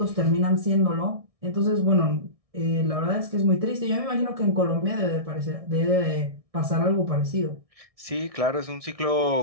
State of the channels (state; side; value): late; left; 1.6 ms